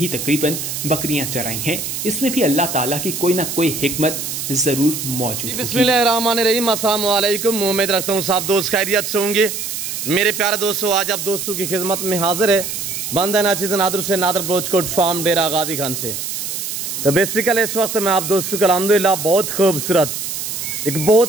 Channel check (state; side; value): noise; right; hiss, 5 dB below the sound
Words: तकरीबन बकरियां चराई हैं। इसमें भी अल्लाह ताला की कोई ना कोई हिकमत जरूर मौजूद है। बिस्मिल्लाहिर्रहमानिर्रहीम, अस्सलाम वालेकुम। उम्मीद रखता हूँ सब दोस्त खैरियत से होंगे। मेरे प्यारे दोस्तों, आज आप दोस्तों की खिदमत में हाजिर है बंदा नाचिज़ नादर से नादर ब्लोचकोट फार्म डेरा गादी खान से। तो बेसिकली इस वक्त मैं आप दोस्तों को अल्हम्दुलिल्लाह बहुत खूबसूरत एक